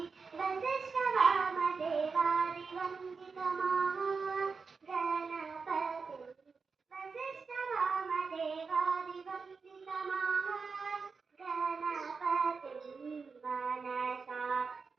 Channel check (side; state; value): left; quieter; 4.9 dB